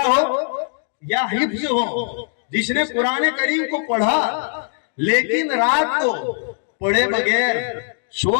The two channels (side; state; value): right; silent; digital silence